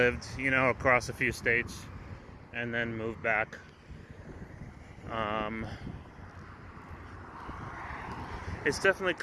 you know, across a few states and then moved back. It's definitely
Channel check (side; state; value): both; identical; correlation 1.00